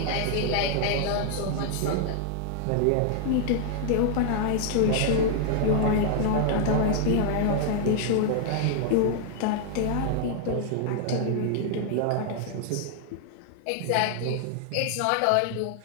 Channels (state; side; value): different; both; correlation 0.00